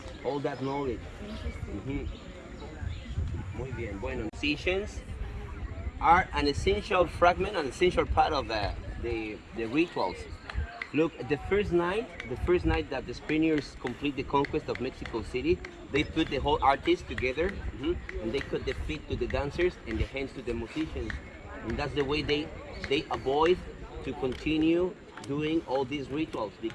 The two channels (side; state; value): both; identical; correlation 1.00